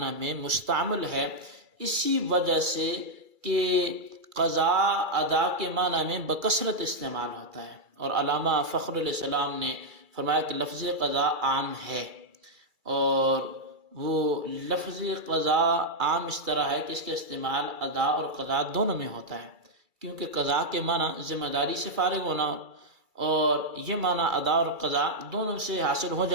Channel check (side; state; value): left; late; 2.3 ms